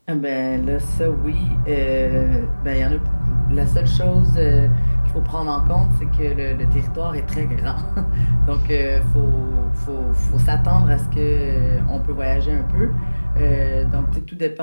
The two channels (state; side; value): inverted; both; correlation -1.00